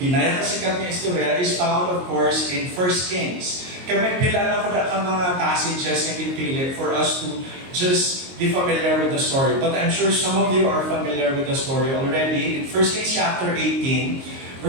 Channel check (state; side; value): late; left; 22 ms